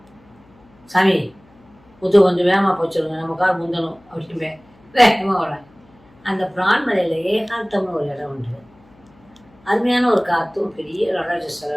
சாமி முத்து கொஞ்சம் வேகமாக போச்சுருங்க, நம்ம கார் முந்தணும் அப்படின்னு வேகமாக வரேன். அந்த பிரான்மலையில் ஏகாந்தம்னு ஒரு இடம் உண்டு. அருமையான ஒரு காற்றும் பெரிய நடராஜ சிலை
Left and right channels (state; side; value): noise; left; hum, 29 dB below the sound